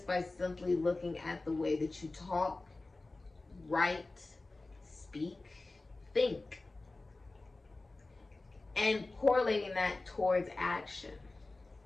by simply looking at the way that you talk, write, speak, think, and correlating that towards action.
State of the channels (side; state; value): right; quieter; 3.2 dB